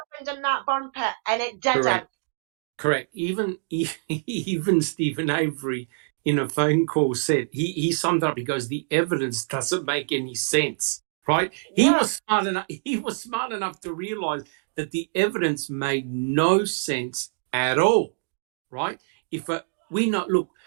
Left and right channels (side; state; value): left; silent; digital silence